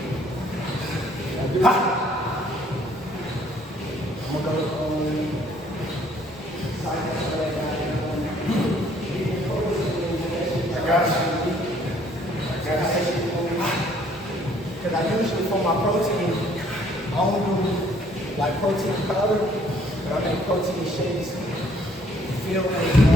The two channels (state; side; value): normal; both; correlation 0.62